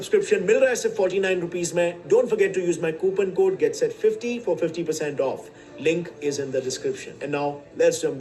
मिल रहा है सिर्फ 49 रुपीज में। Don't forget to use my coupon code GetSet50 for 50% off. Link is in the description. And now let's jump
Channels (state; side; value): identical; both; correlation 1.00